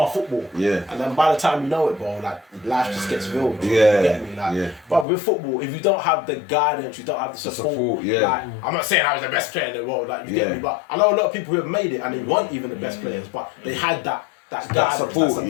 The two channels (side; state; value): right; drops out; at 5.1 s